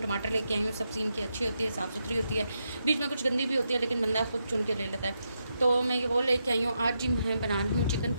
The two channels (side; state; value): both; inverted; correlation -0.84